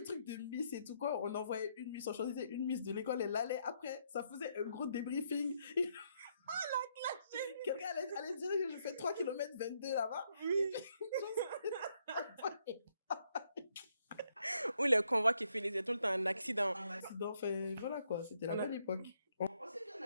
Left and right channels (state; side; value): inverted; both; correlation -0.74